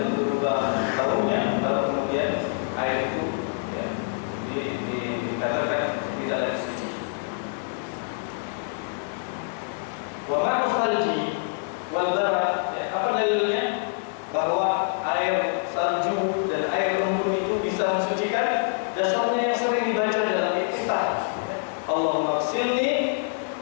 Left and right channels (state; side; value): silent; right; 58 dB below the other